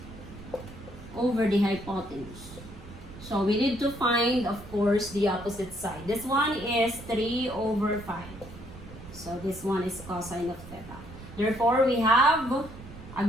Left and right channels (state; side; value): noise; right; rumble, 15 dB below the sound